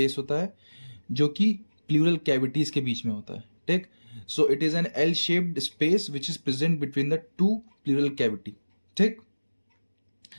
होता है जो कि प्लूरल कैविटीज के बीच में होता है। ठीक, so it is an L shaped space which is present between the two pleural cavity. ठीक,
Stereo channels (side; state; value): both; inverted; correlation -1.00